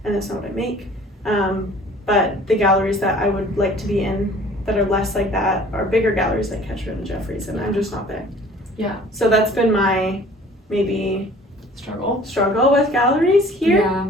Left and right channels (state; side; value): normal; both; correlation 0.50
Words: and that's not what I make. But the galleries that I would like to be in that are less like that are bigger galleries like Ketchum and Jeffries, and I'm just not there. Yeah. So that's been my maybe struggle with galleries here.